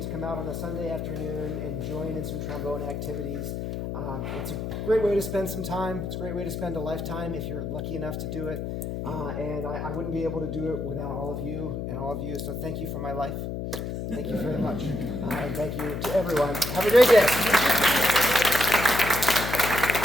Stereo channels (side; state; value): left; noise; hum, 4 dB below the sound